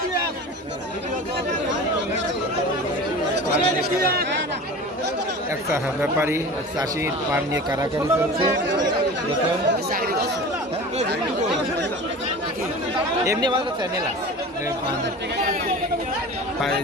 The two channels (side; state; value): both; normal; correlation 0.35